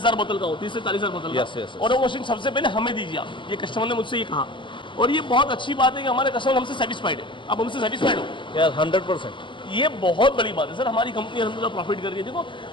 बोतल का हो, 30 से 40,000 बोतल का। Yes, yes, yes. और वो मशीन सबसे पहले हमें दीजिए आप, ये कस्टमर ने मुझसे ये कहा। और ये बहुत अच्छी बात है कि हमारे कस्टमर हमसे सेटिस्फाइड है। आप हमसे सेटिस्फाइड हो? यार 100%। ये बहुत बड़ी बात है सर। हमारी कंपनी अल्हम्दुलिल्लाह प्रॉफिट कर रही है। देखो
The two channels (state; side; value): late; right; 0.24 ms